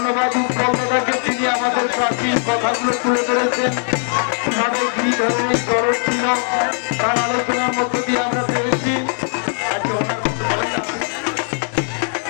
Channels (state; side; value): silent; right; 56 dB below the other